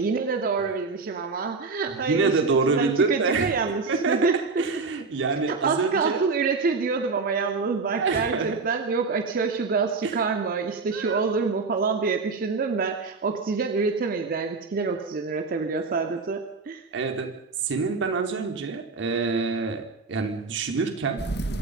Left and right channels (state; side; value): quieter; left; 4.3 dB